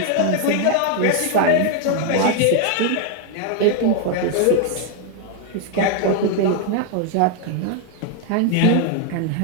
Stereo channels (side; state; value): both; different; correlation 0.00